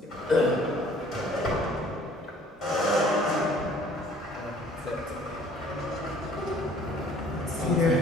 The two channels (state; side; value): normal; both; correlation 0.55